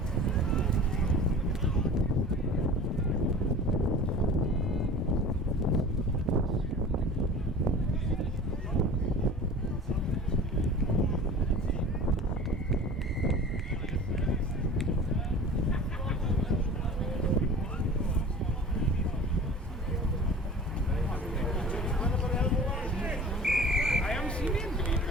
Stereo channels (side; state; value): both; normal; correlation 0.40